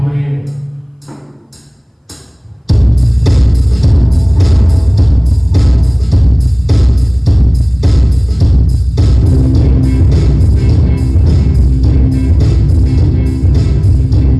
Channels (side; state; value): both; identical; correlation 1.00